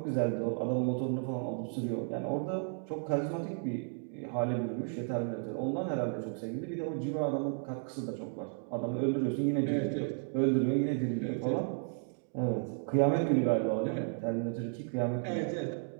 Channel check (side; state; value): left; silent; 55 dB below the other